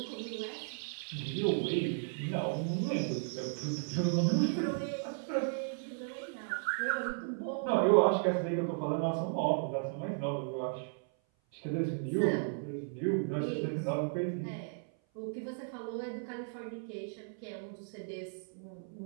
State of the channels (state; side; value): silent; left; 54 dB below the other